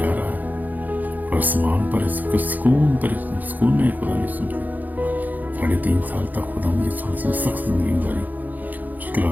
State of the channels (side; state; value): left; late; 0.082 ms